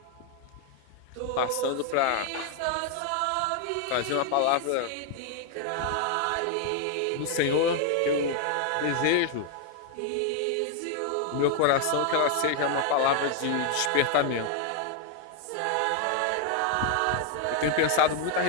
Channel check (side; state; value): both; different; correlation 0.00